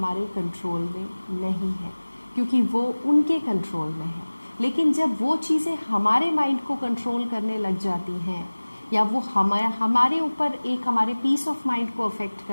कंट्रोल में नहीं है क्योंकि वो उनके कंट्रोल में है। लेकिन जब वो चीज़ें हमारे माइंड को कंट्रोल करने लग जाती हैं या वो हमारे ऊपर एक हमारे पीस ऑफ माइंड को अफेक्ट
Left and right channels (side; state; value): both; inverted; correlation -1.00